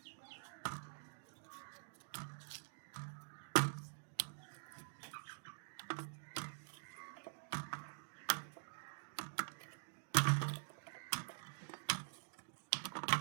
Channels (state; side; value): silent; left; digital silence